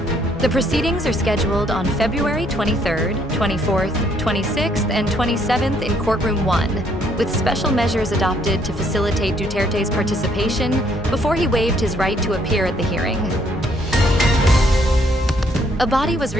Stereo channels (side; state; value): both; normal; correlation 0.68